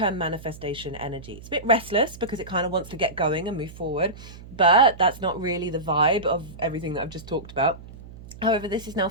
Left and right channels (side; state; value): right; noise; hum, 17 dB below the sound